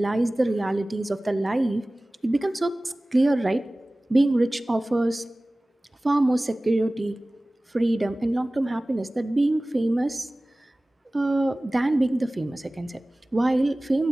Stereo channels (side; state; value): both; normal; correlation 0.98